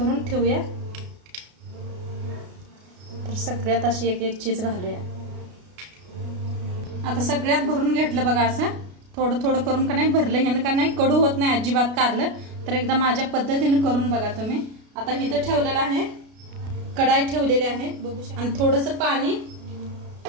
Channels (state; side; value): late; left; 33 ms